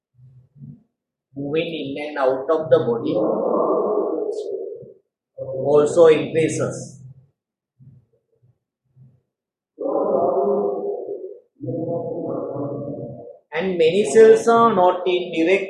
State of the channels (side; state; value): both; identical; correlation 1.00